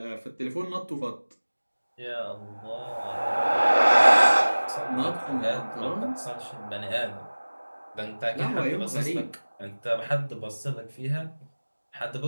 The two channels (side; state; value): both; inverted; correlation -1.00